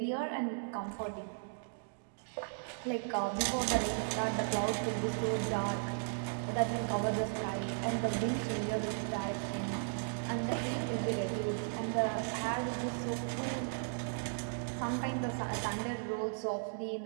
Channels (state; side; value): silent; left; digital silence